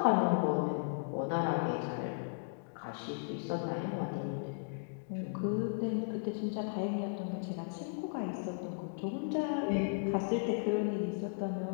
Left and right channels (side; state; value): right; silent; digital silence